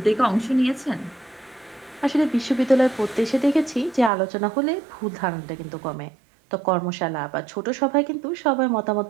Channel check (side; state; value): left; drops out; at 4.1 s